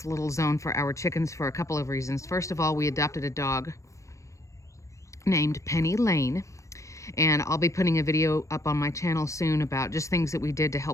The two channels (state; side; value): late; right; 0.15 ms